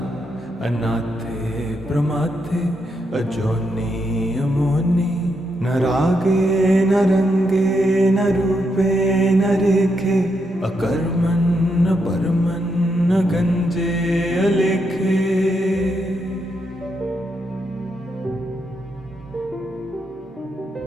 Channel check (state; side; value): normal; both; correlation 0.81